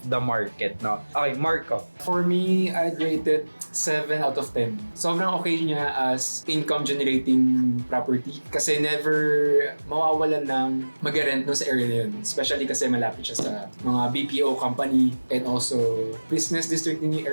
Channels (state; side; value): inverted; both; correlation -1.00